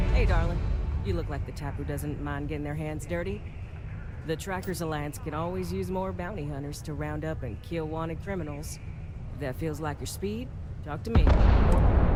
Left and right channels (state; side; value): identical; both; correlation 1.00